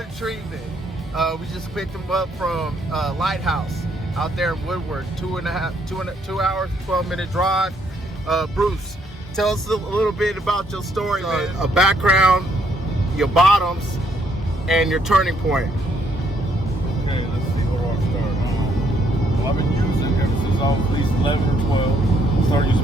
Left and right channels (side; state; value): both; normal; correlation 0.70